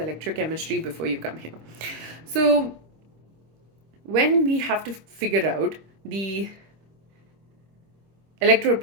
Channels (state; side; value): late; left; 26 ms